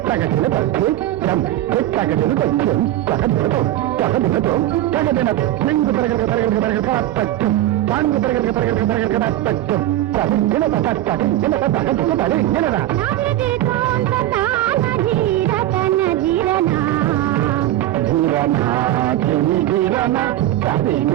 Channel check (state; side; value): quieter; left; 13.9 dB